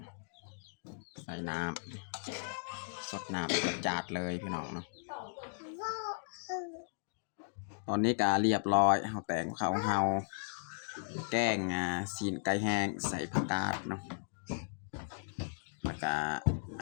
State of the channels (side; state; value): right; silent; digital silence